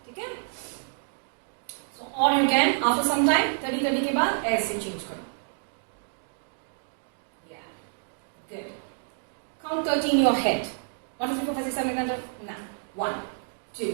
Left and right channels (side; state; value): left; silent; digital silence